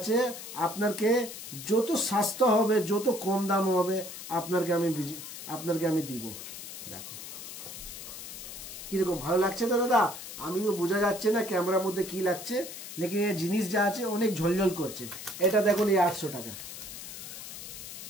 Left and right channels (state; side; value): noise; left; hiss, 10 dB below the sound